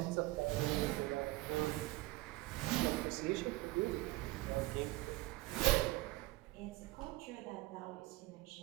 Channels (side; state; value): left; quieter; 19.7 dB